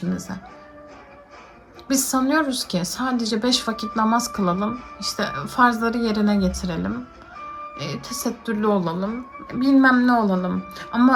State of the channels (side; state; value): both; identical; correlation 1.00